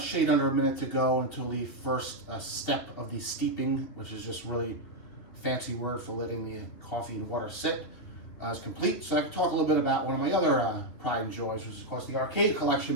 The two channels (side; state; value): right; late; 2.8 ms